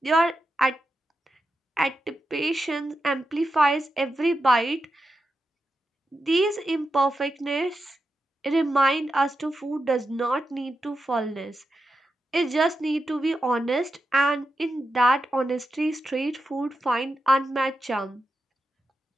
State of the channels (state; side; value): normal; both; correlation 0.88